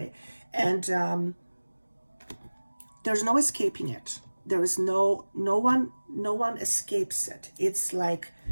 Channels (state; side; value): inverted; both; correlation -1.00